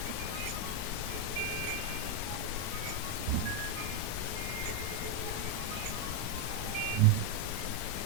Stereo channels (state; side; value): different; both; correlation 0.02